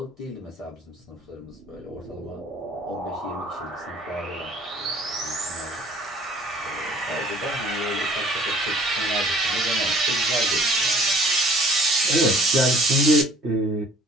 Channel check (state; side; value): normal; both; correlation 0.54